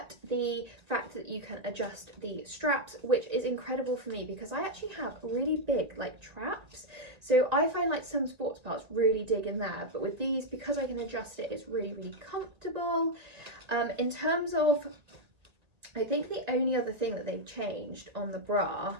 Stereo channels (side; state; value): left; late; 1.8 ms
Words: the fact that you can adjust the straps, which is incredible for me because I actually have really big like traps, so I find like some sports bras really dig in there, but with these, because I can adjust it, it's really comfortable. In terms of, I think the only other thing that they've changed on the bra